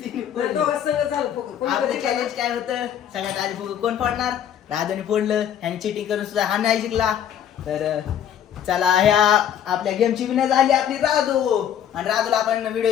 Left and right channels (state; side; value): quieter; right; 9.7 dB